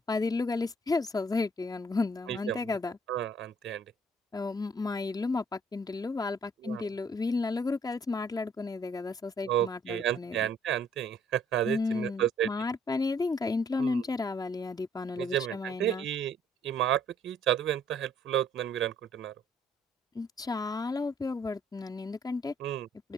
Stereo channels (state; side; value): normal; both; correlation 0.62